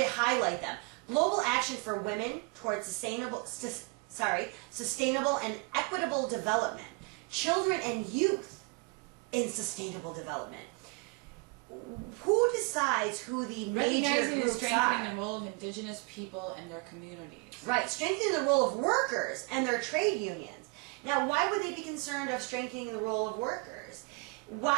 highlight them. Global action for women towards sustainable and equitable development. Children and youth in sustainable development. Who decides who the major Recognizing and groups strengthening are? the role of indigenous people and their communities. Right, strengthening the role of workers and their trade unions. Now, why would they be concerned of strengthening the role of workers?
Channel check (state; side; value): quieter; left; 30.1 dB